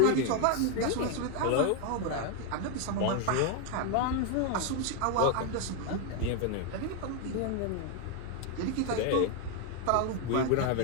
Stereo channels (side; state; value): both; different; correlation 0.01